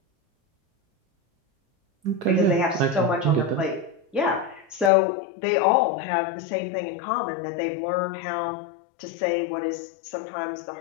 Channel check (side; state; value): right; drops out; at 4.9 s